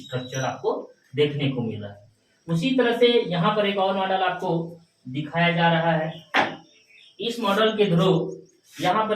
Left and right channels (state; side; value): identical; both; correlation 1.00